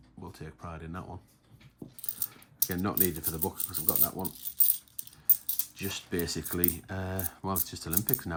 We'll take pride in that one. Again, not needed for the book because I've got that one. Just basically, well, it's just Olympics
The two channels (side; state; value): both; identical; correlation 1.00